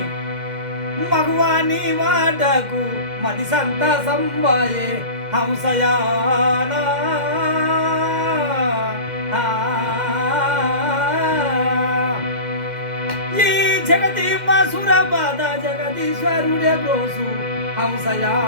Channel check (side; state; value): left; late; 2.1 ms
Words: మగువాని వాటకు మది సంత సంబాయే హంసయానా ఈ జగతి మసుర పద జగదీశ్వరుడే బ్రోసు